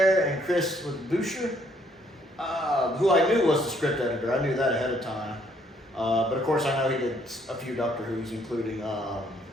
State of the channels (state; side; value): normal; both; correlation 0.67